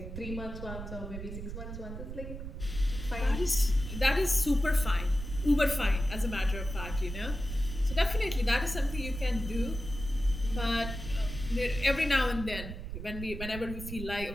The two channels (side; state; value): right; noise; rumble, 8 dB below the sound